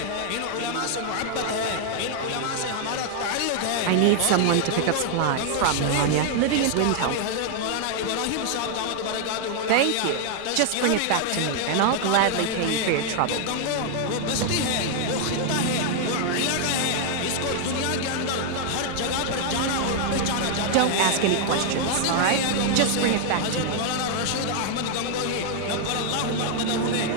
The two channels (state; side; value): different; both; correlation 0.00